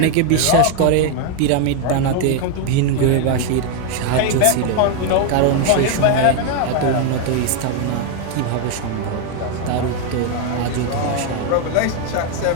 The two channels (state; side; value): different; both; correlation 0.01